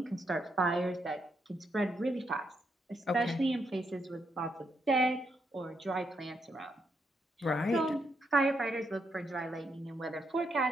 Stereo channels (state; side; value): normal; both; correlation 0.79